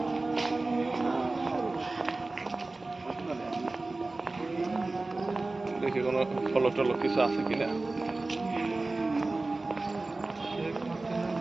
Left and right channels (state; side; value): quieter; left; 3.2 dB